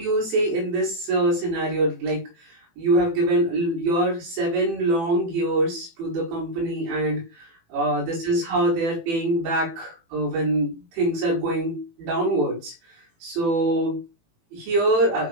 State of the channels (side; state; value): left; late; 18 ms